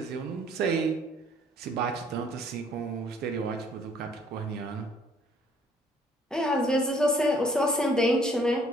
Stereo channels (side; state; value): both; normal; correlation 0.61